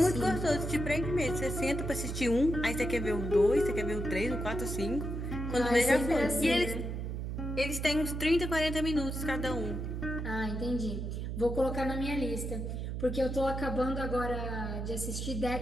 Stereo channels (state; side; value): noise; right; hum, 4 dB below the sound